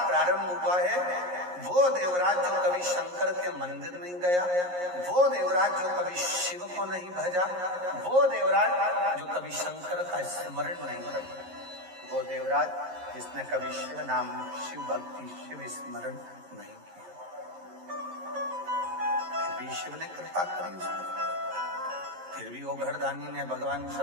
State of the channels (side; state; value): left; late; 11 ms